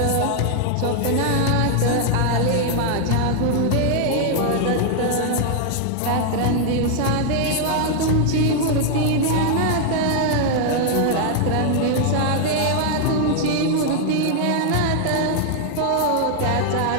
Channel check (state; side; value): different; both; correlation 0.00